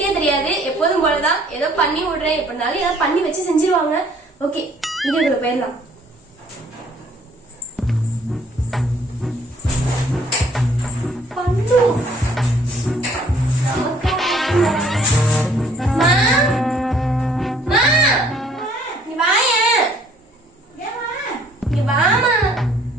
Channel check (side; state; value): both; normal; correlation 0.59